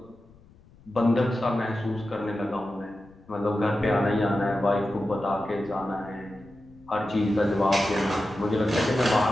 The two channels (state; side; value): noise; left; rumble, 26 dB below the sound